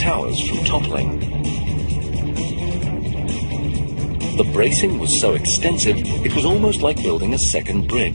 from toppling. The bracing was so extensive, it was almost like building a second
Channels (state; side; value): inverted; both; correlation -1.00